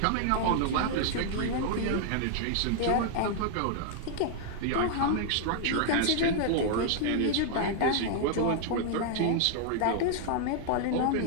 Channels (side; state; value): both; different; correlation 0.00